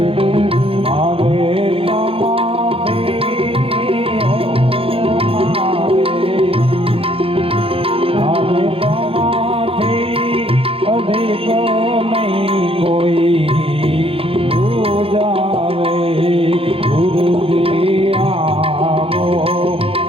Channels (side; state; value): left; late; 0.27 ms